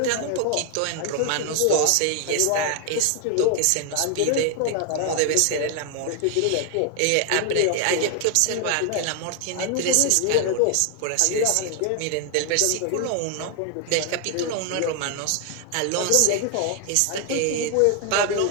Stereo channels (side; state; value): both; different; correlation 0.00